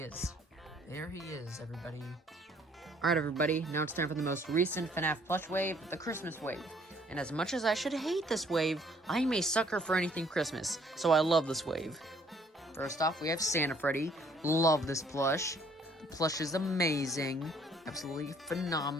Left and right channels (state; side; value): normal; both; correlation 0.62